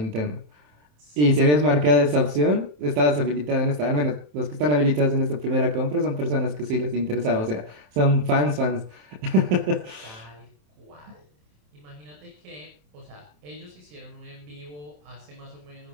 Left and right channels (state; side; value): late; left; 27 ms